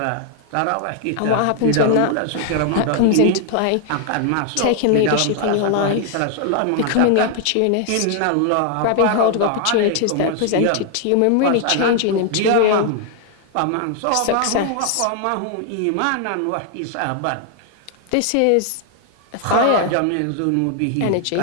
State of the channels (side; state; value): both; different; correlation 0.00